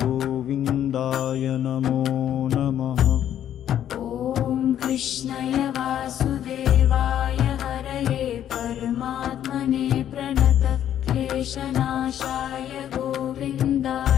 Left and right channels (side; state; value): right; quieter; 10.6 dB